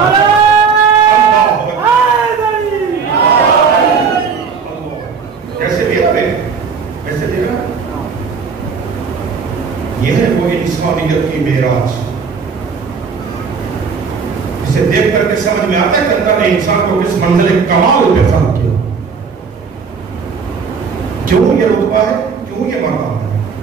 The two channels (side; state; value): left; quieter; 5.7 dB